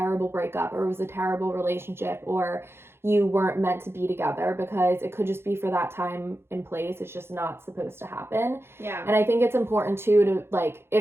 breakup or it was a terrible relationship or you weren't meant to be together, because it could just be for that time and place. It's just not supposed to happen. Yeah. And I think it's important too to like,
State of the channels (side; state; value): left; late; 0.12 ms